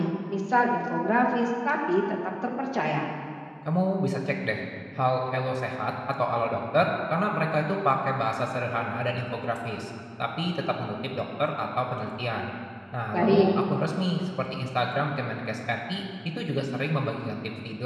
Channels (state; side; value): identical; both; correlation 1.00